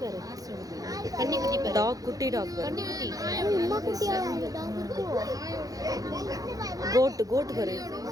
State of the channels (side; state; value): left; late; 0.17 ms